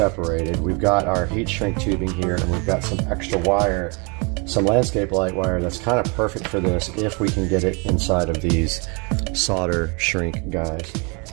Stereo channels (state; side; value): quieter; left; 32.1 dB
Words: We've got our heat shrink tubing here, and we've got some extra wire, some landscape light wire that's kind of perfect for this if we can get it inside of these solder shrink guys.